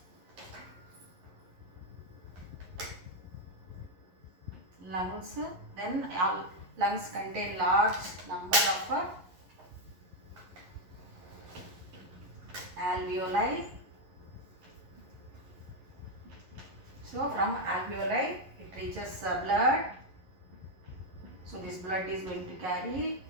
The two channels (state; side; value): late; left; 11 ms